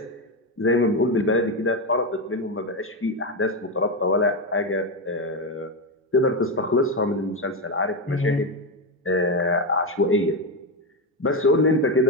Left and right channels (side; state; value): both; normal; correlation 0.10